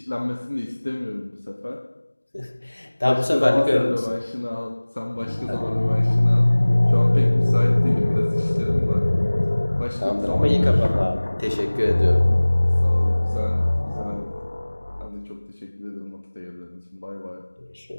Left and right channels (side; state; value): both; inverted; correlation -1.00